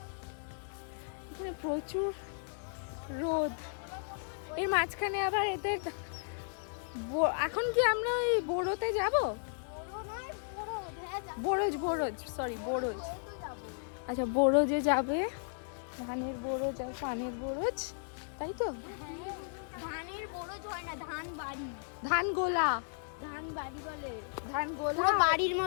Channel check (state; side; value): silent; right; digital silence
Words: এখানে প্রচুর রোদ, এর মাঝখানে আবার এদের এখন কি আমরা ওই বোরোতে যাব? বোরোজ সরি বোরোজ। আচ্ছা বোরোজে যাবে, ধানের বোরোজ আর পানের বোরোজ, তাই তো? ধানের বরজ হয় না, ধান বাড়ি, ধান গোলা, ধান বাড়ি বলে, ধান গোলা পুরো বাড়ির